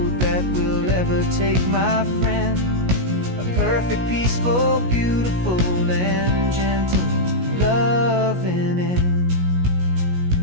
that will ever take, my friend. A perfect, peaceful, beautiful, and gentle loving end.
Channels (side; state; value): left; late; 17 ms